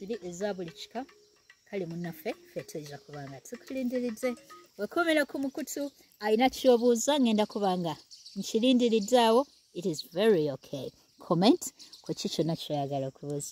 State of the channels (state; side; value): identical; both; correlation 1.00